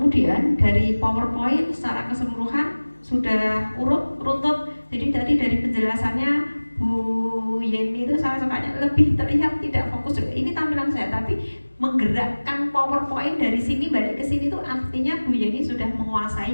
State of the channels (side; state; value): both; inverted; correlation -1.00